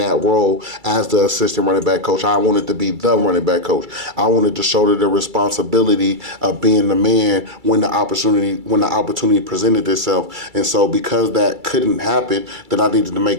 role as the assistant running back coach. I wanted to be the running back coach. I wanted to shoulder the responsibility of being the man when the opportunity presented itself. And so because that couldn't happen, then I needed to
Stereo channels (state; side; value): late; left; 2.3 ms